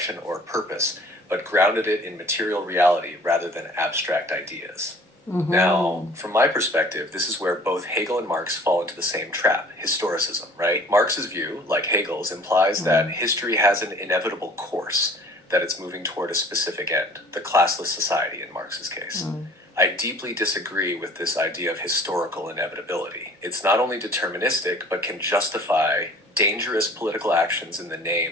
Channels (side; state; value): both; normal; correlation 0.49